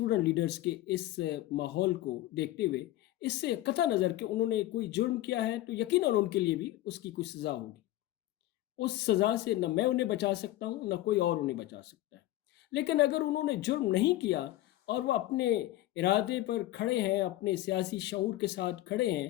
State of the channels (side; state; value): right; quieter; 15.5 dB